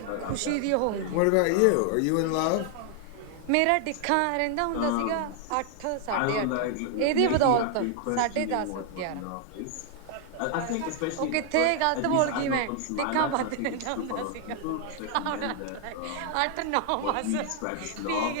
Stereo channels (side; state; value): both; different; correlation 0.00